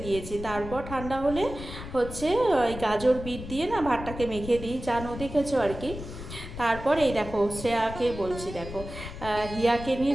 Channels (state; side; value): noise; left; rumble, 10 dB below the sound